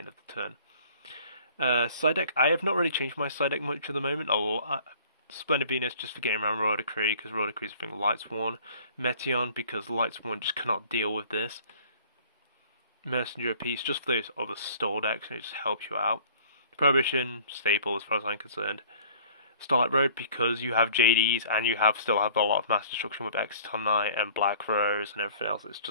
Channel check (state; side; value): inverted; both; correlation -0.52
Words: of the turn. Side deck, I have not really changed my side deck much at the moment. Splendid Venus just for getting around Royal Decree because Royal Decree is a thing Lightsworn. Meteon because Lightsworn just cannot deal with this. Mercenary of Peace just for those other stall decks and it just helps you out. Prohibition, staple as far as I'm concerned. Starlight Road because you have JDs and you still have a lot of mass destruction with Exciton Knight and Black Rose and everything else. It's